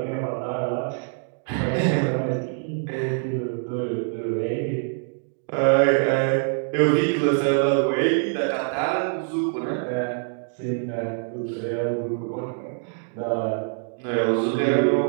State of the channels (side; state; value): left; silent; 62 dB below the other